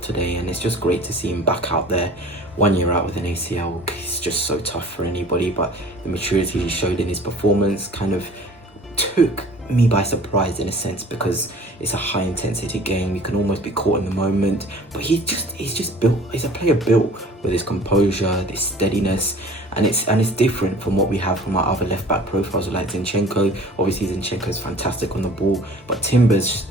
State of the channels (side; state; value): both; normal; correlation 0.47